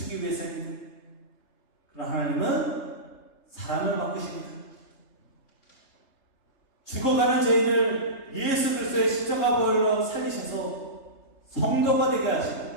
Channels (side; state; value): right; late; 3.3 ms